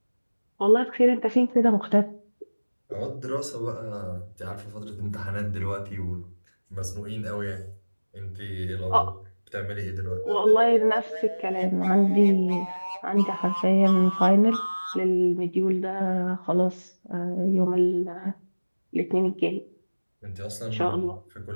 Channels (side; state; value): both; inverted; correlation -1.00